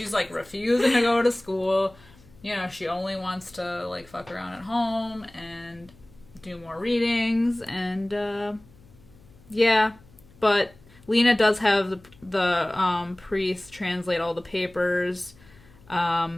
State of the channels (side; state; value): left; noise; hum, 26 dB below the sound